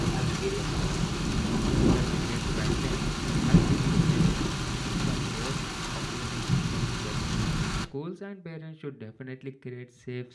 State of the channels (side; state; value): both; identical; correlation 1.00